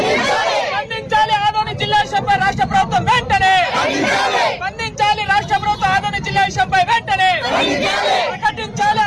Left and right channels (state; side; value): identical; both; correlation 1.00